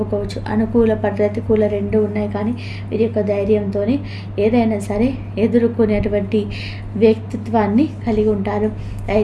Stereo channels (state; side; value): identical; both; correlation 1.00